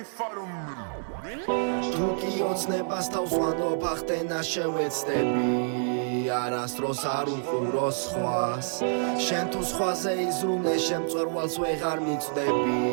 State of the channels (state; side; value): silent; left; digital silence